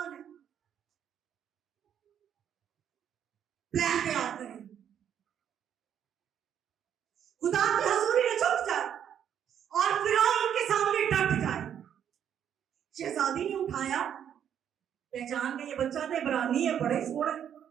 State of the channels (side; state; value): left; quieter; 9.2 dB